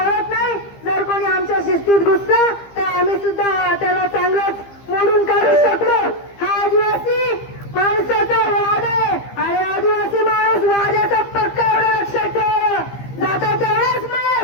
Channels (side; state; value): right; late; 15 ms